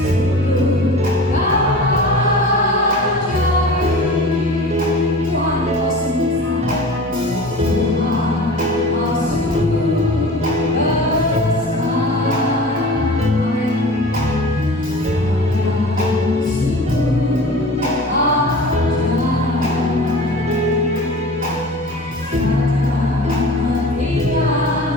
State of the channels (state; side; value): normal; both; correlation 0.38